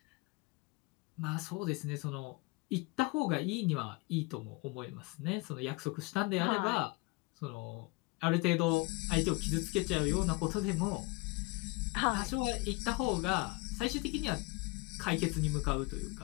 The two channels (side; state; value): right; quieter; 24.5 dB